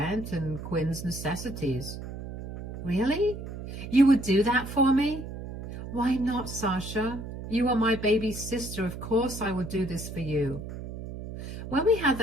and Quinn's necessities. Really? You would do that for me? Why not, Sasha? You are my baby's sister. Of course I would do this for you. When we had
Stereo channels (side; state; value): right; noise; hum, 9 dB below the sound